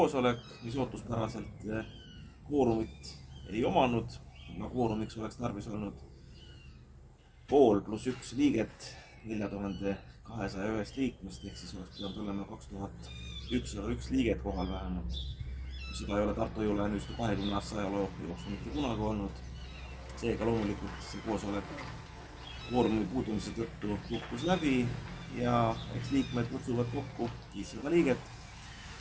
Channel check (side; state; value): both; identical; correlation 1.00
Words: mis ootuspäraselt kvoorumit ei omanud. Kvoorumiks oleks tarvis olnud 5+1 liiget 4201 liikmest, ehk siis oleks pidanud olema 2101 liiget kohal vähemalt. Seda ei ole Tartu Hoiu-laenuühistu 20 aasta ajaloo jooksul mitte kunagi olnud. Seega loomulikult see koosolek kvoorumi puudumise tõttu kukkus läbi ja eks liikmed kutsuvad kokku 500 liiget